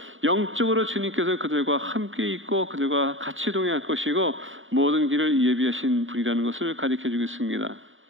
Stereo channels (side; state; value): left; late; 0.57 ms